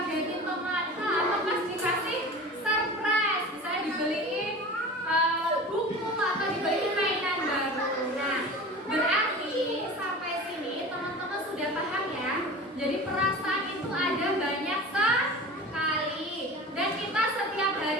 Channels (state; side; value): normal; both; correlation 0.35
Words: temannya atau pas dikasih surprise, misalnya dibeliin buku atau dibeliin mainan baru. Nah, berarti sampai sini teman-teman sudah paham ya. Jadi perasaan itu ada banyak sekali dan kita setiap